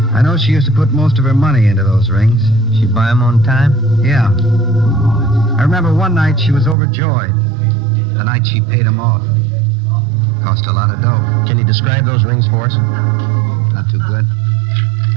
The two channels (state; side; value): drops out; left; at 6.8 s